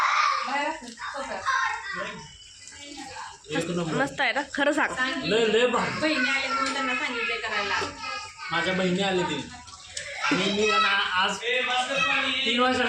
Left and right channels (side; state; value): both; identical; correlation 1.00